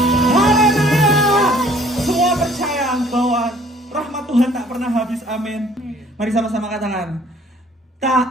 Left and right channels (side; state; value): both; normal; correlation 0.57